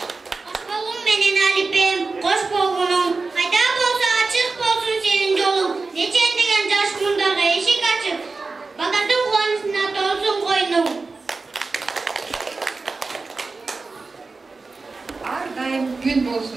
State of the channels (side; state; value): left; quieter; 3.9 dB